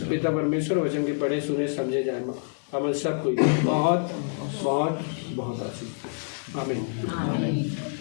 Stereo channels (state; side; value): silent; right; digital silence